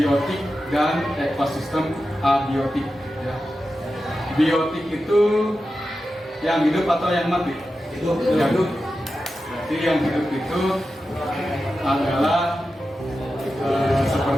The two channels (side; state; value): both; normal; correlation 0.91